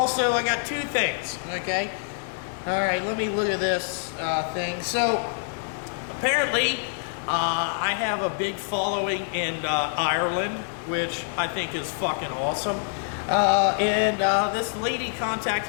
I got two things, okay? All right, let me look at this thing. So, apparently, I have a big following in Ireland, which I think is fucking awesome. This lady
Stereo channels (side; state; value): right; silent; 61 dB below the other